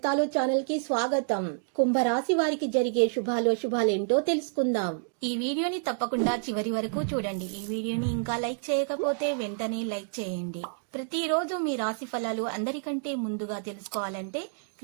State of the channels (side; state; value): left; silent; digital silence